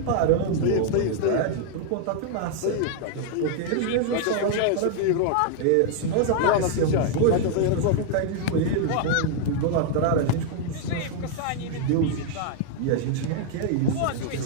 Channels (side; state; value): both; different; correlation 0.00